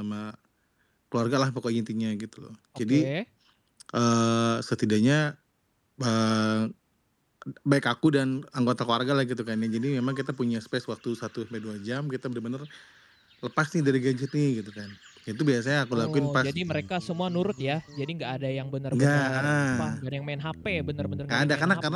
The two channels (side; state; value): both; identical; correlation 1.00